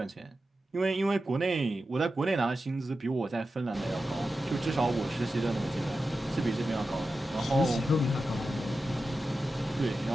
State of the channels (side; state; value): both; normal; correlation 0.92